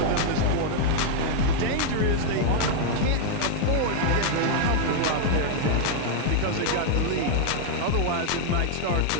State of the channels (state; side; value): different; both; correlation 0.00